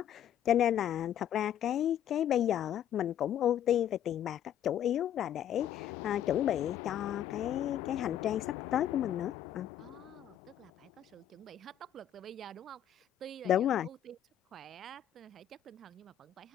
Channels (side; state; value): right; quieter; 10.4 dB